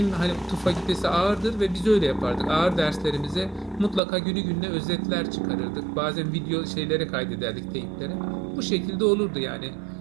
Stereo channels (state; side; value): drops out; left; at 4.0 s